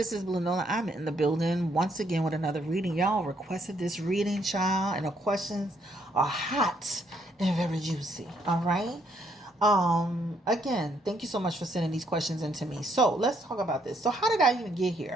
this is Blue Nola. I'm in the building once again with another reading. Y'all requested this reading, child, and the questions are hot and very juicy. All right. Again, thank you so much for sending these questions in to me. So let's talk about this. So how did I even get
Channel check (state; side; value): normal; both; correlation 0.71